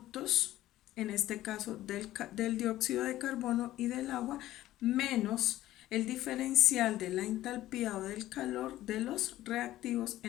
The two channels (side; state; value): right; quieter; 14.7 dB